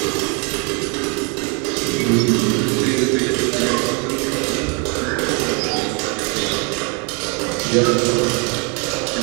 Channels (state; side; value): quieter; left; 34.0 dB